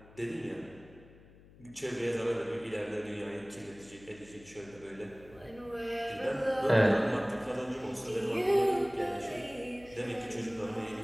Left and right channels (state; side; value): noise; left; hum, 23 dB below the sound